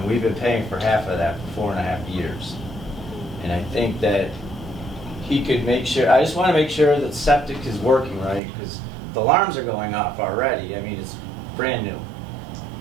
we've been paying for half of that for 4.5 years. And I think that he could make sure, I just want to make sure that septic is working right, because the alarms are going off already. I mean, it's brand new.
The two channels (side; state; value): left; drops out; at 8.4 s